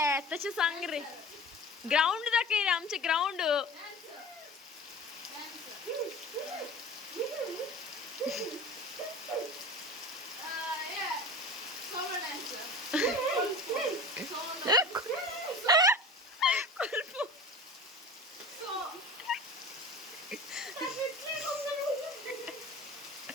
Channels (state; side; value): normal; both; correlation 0.36